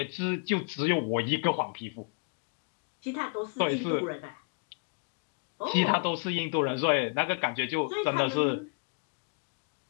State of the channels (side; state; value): right; quieter; 39.7 dB